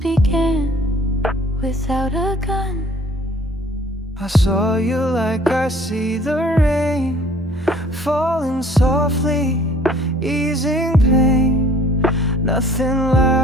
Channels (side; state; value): both; normal; correlation 0.54